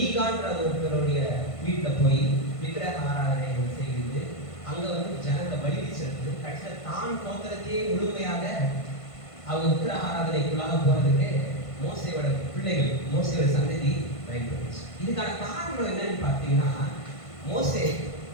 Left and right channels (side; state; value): right; late; 1.5 ms